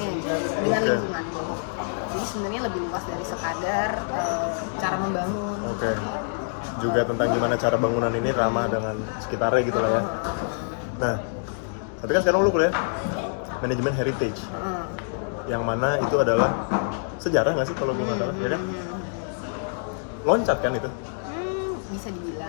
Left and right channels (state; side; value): silent; right; digital silence